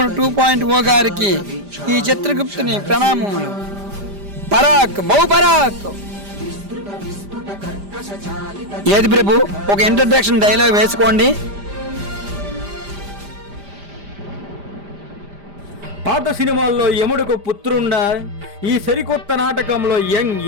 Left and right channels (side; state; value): left; late; 5.0 ms